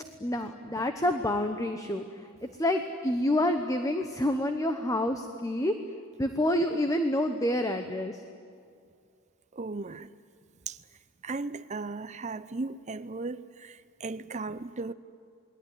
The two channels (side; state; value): both; normal; correlation 0.63